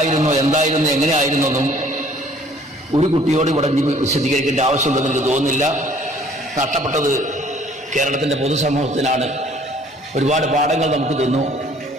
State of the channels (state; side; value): normal; both; correlation 0.56